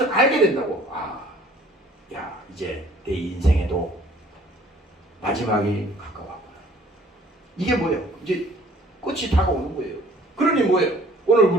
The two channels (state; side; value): normal; both; correlation 0.55